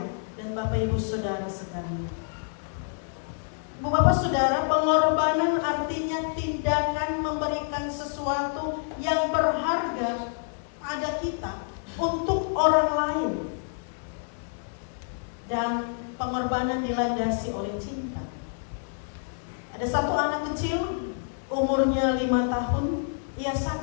dan bapak ibu saudara sekalian. Ibu bapak saudara, pengorbanan artinya tindakan memberikan sesuatu yang berharga pada kita untuk orang lain. Dan pengorbanan dilandasi oleh cinta. Ada satu anak kecil, umurnya 5 tahun, ia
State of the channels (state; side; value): silent; right; digital silence